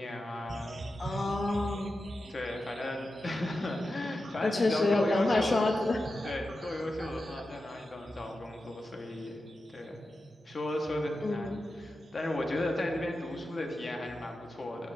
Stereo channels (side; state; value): both; normal; correlation 0.91